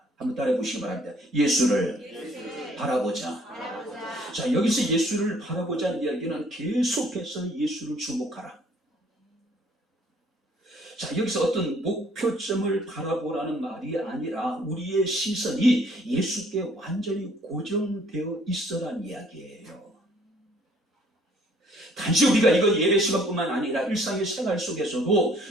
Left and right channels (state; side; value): normal; both; correlation 0.60